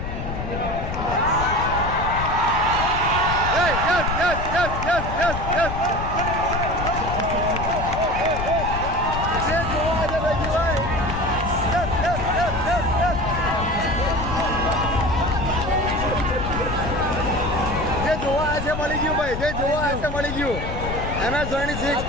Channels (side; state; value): left; noise; rumble, 5 dB below the sound